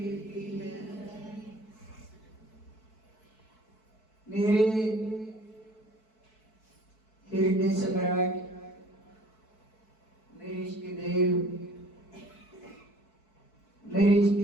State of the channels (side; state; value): right; late; 4.6 ms